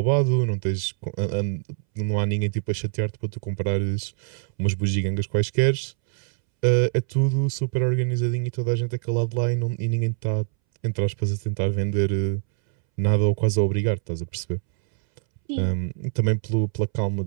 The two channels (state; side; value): silent; left; 62 dB below the other